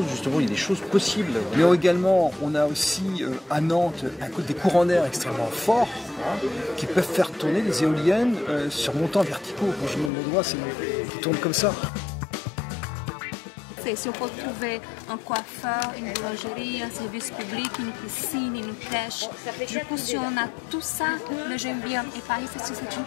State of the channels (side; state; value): right; drops out; at 10.1 s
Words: justement, il y a des choses possibles. Mais également, on a aussi à Nantes des courants d'air extrêmement forts qui peuvent faire tourner des éoliennes sur montants verticaux. Quand je monte le doigt, qui tournent comme ça. Si on peut trouver un coiffeur, une boulangerie, un service public, une piscine, une crèche, du coup si on a tout ça, le j'aime bien. Et Paris, c'est une